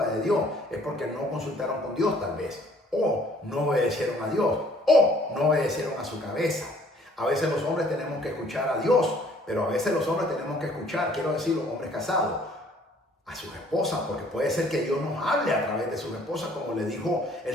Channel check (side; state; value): both; normal; correlation 0.58